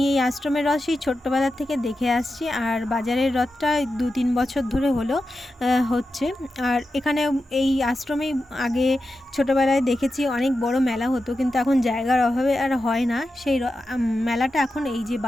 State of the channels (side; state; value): both; normal; correlation 0.91